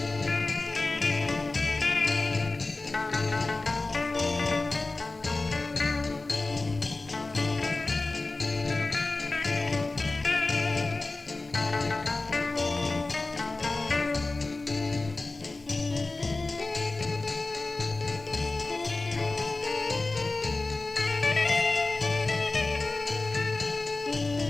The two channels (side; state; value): right; quieter; 3.3 dB